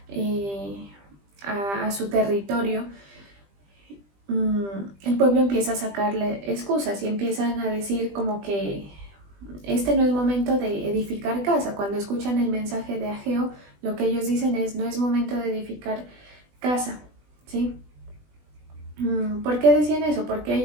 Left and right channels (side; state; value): left; late; 20 ms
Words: a su territorio, el pueblo empieza a sacarle excusas y empiezan a decir como que este no es momento de edificar casa. Cuando escuchan el mensaje de Ageo, lo que ellos dicen es: no es momento de edificar casa, ¿sí? ¿Por qué decían eso? Porque